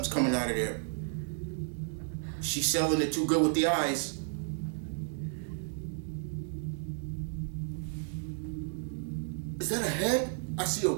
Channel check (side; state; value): left; silent; digital silence